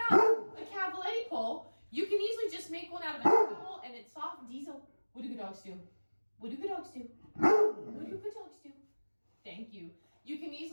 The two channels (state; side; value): inverted; both; correlation -1.00